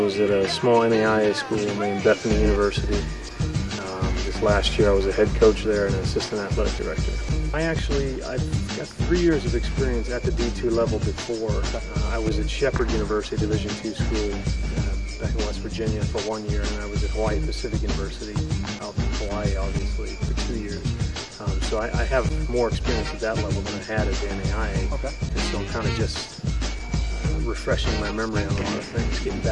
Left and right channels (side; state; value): both; identical; correlation 1.00